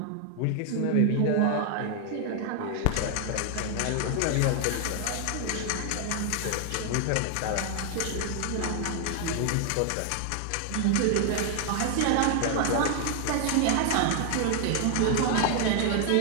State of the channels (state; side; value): different; both; correlation 0.00